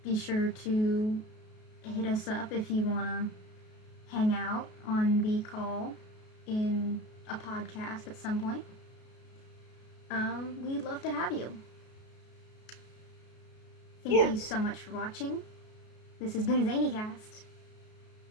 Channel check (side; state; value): right; late; 33 ms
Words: Be sure to hit us up if you want to hang out on the call in a podcast at some point. We'd love to have you. Thank you so much for watching. This has been Zanycast.